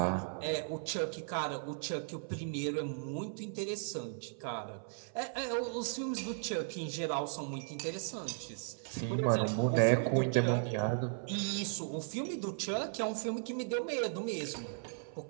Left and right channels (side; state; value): left; silent; 54 dB below the other